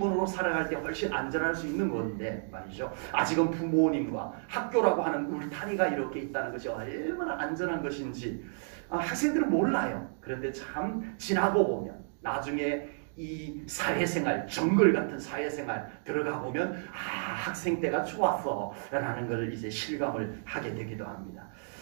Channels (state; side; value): silent; left; digital silence